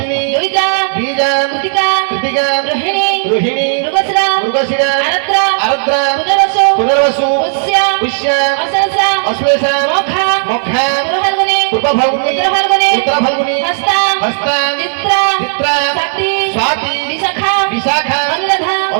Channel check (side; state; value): left; silent; digital silence